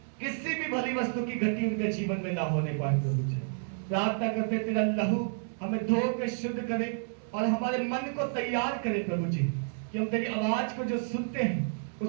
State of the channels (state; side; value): silent; left; 57 dB below the other